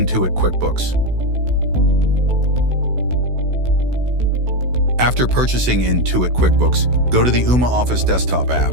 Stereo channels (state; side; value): late; left; 16 ms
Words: QuickBooks. After purchasing Intuit QuickBooks, go to the Ooma Office desktop app.